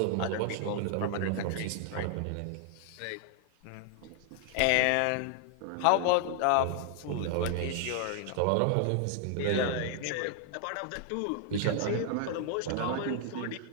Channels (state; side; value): different; both; correlation 0.00